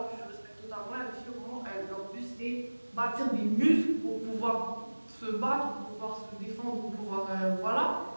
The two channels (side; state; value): both; inverted; correlation -1.00